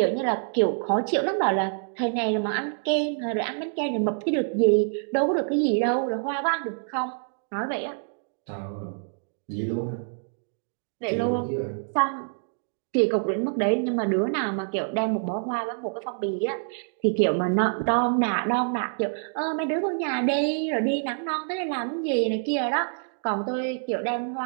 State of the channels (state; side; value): silent; left; digital silence